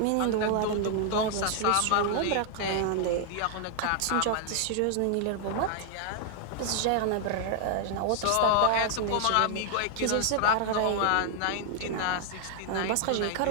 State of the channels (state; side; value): different; both; correlation 0.00